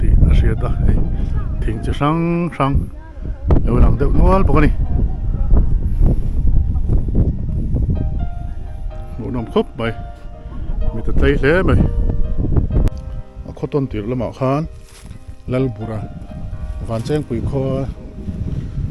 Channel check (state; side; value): identical; both; correlation 1.00